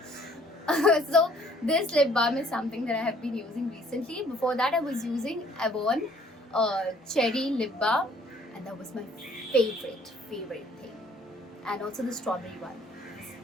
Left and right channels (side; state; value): both; normal; correlation 0.59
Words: So this lip balm is something that I have been using recently. Before that, I was using Avon cherry lip balm, and that was my favorite thing. And also the strawberry one is